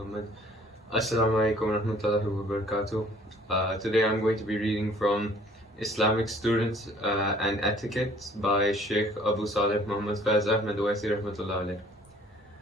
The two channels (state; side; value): normal; both; correlation 0.56